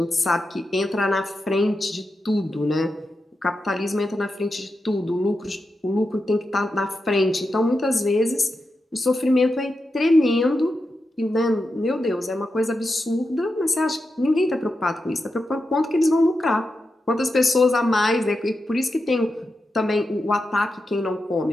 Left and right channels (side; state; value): both; normal; correlation 0.89